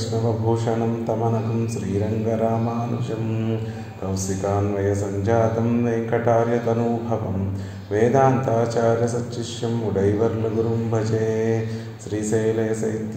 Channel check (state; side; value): identical; both; correlation 1.00